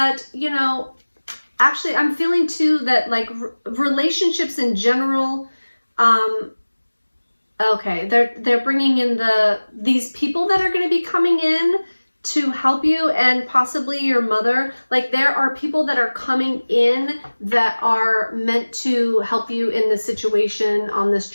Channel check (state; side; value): inverted; both; correlation -1.00